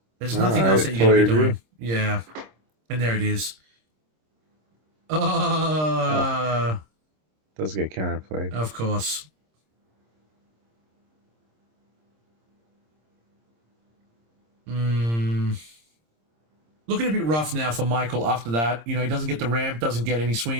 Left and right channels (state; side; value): late; left; 26 ms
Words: There's No, nothing I else that you're totally going to be agree. doing. Yeah. And there it is. Does get counterplayed. Of course. Looking a bit rough now for Michael after that. You know, he doesn't get the ramp, doesn't get any